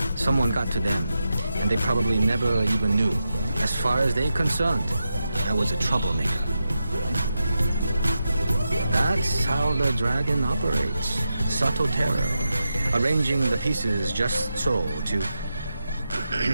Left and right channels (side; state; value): both; inverted; correlation -0.89